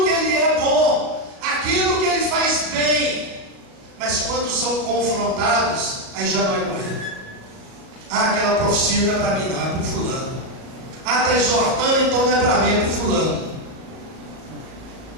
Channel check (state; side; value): late; left; 37 ms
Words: que Ele é bom, aquilo que Ele faz bem, mas quando são confrontados, aí já não é com Ele. Aquela profecia não é para mim, não, é para o fulano. Está exortando, então não é para mim, é para o fulano.